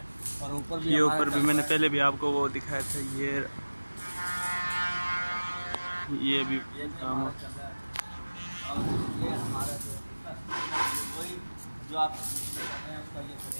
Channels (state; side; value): inverted; both; correlation -1.00